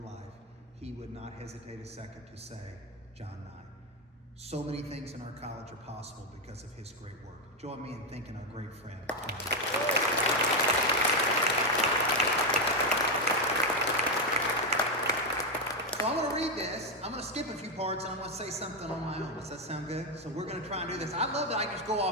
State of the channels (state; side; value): normal; both; correlation 0.05